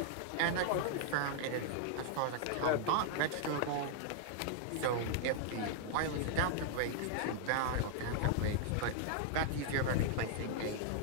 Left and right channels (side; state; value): both; different; correlation -0.01